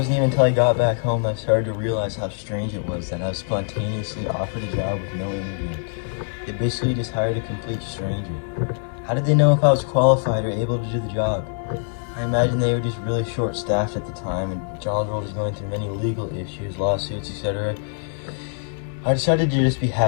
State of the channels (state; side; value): silent; right; digital silence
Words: even until I got back home that I started to realize how strange it was that I was spontaneously offered a job with no interview. They basically just hired a complete stranger. How did they know if I was qualified or able to do the job? I imagine they were just really short-staffed at the time and John's World is going through many legal issues, lawsuits, etc. I decided to just be